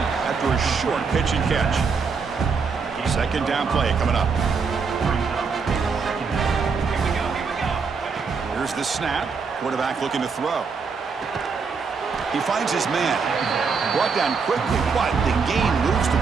after a short pitch and catch. Second down play coming up. Here's the snap. Quarterback looking to throw. He finds his man. Brought down quickly, but the gain moves the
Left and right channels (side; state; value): left; quieter; 5.2 dB